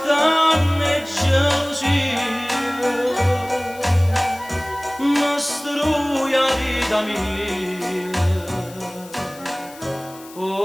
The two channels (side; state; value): left; noise; hiss, 20 dB below the sound